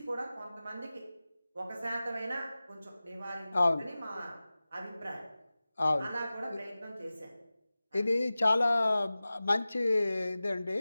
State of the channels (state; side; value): inverted; both; correlation -0.97